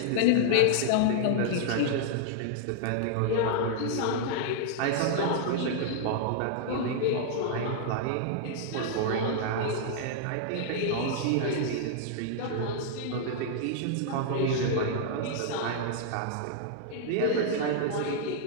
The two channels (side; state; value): both; different; correlation -0.01